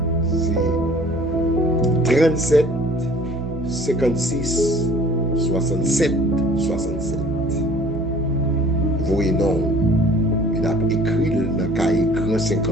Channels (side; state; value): right; noise; hum, 10 dB below the sound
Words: c'est 37 56 67 67. Voyez non, Il a écrit dans le cahier Grand